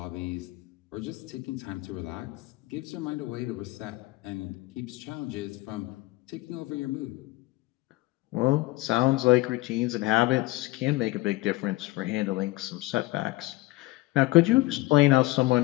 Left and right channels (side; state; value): right; quieter; 20.2 dB